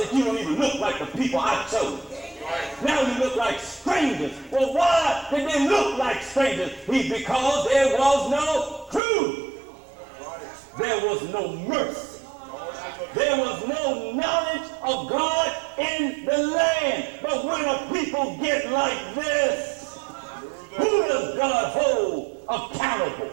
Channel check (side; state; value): left; drops out; at 9.0 s